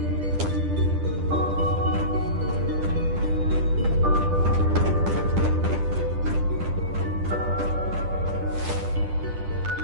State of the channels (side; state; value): left; late; 10 ms